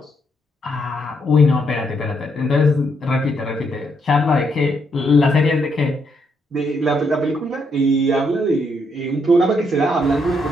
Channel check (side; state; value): both; normal; correlation 0.76